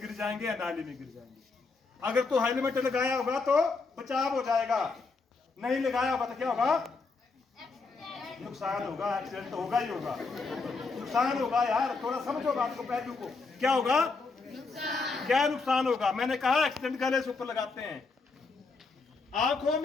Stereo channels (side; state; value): right; quieter; 4.1 dB